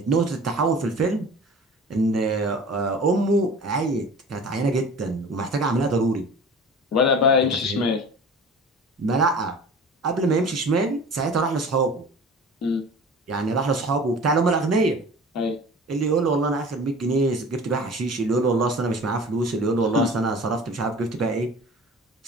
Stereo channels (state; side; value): normal; both; correlation 0.40